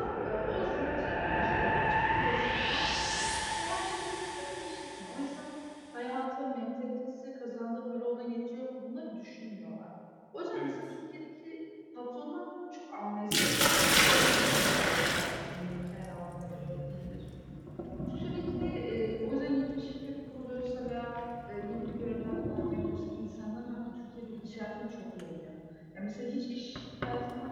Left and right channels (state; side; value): identical; both; correlation 1.00